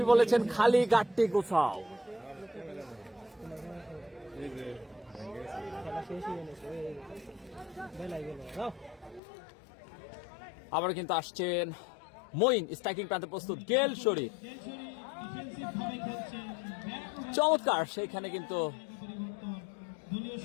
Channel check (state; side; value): drops out; right; at 9.2 s